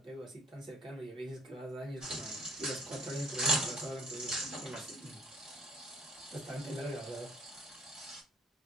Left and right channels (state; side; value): normal; both; correlation 0.60